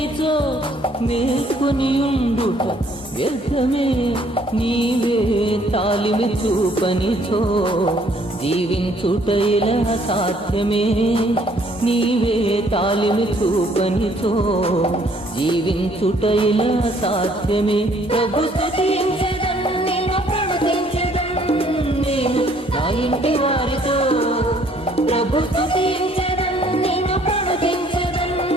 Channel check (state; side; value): normal; both; correlation 0.63